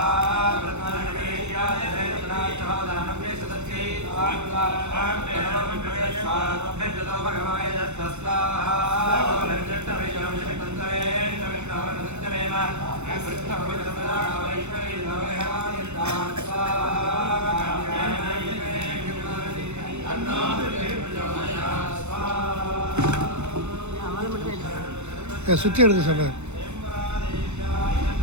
சுற்றி எடுத்து சொல்கிறேன்.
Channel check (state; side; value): late; left; 0.82 ms